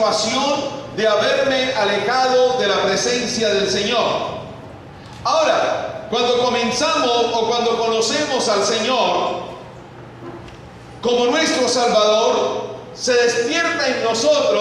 de haberme alejado de la presencia del Señor. Ahora, cuando comenzamos o cuando conocemos al Señor como nuestro Salvador, se despierta en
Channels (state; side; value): identical; both; correlation 1.00